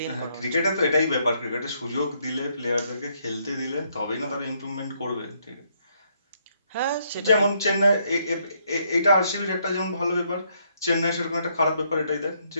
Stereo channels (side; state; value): both; inverted; correlation -0.73